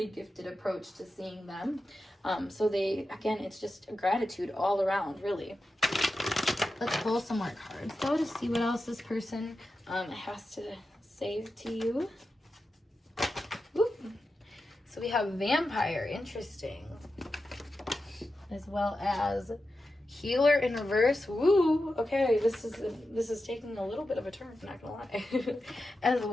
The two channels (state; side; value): normal; both; correlation 0.91